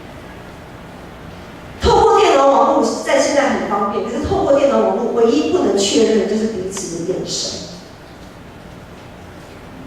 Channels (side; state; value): both; identical; correlation 1.00